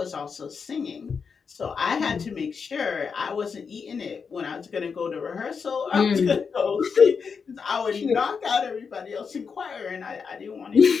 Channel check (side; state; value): right; quieter; 5.8 dB